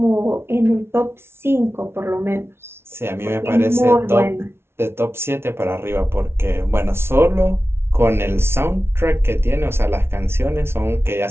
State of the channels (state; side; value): late; left; 0.12 ms